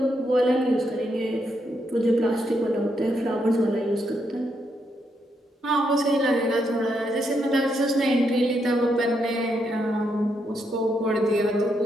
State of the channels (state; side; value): normal; both; correlation 0.79